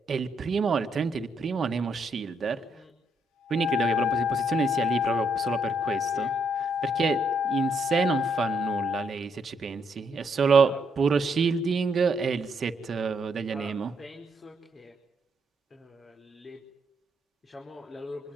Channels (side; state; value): both; normal; correlation 0.74